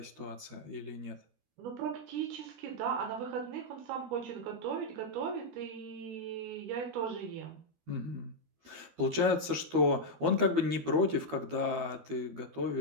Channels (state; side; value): late; left; 12 ms